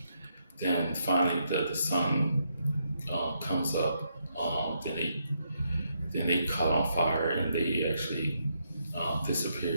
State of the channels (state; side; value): inverted; both; correlation -0.78